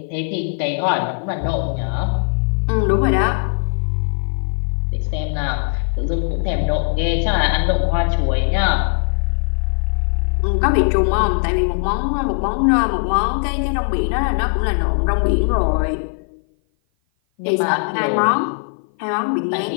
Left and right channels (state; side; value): silent; right; 56 dB below the other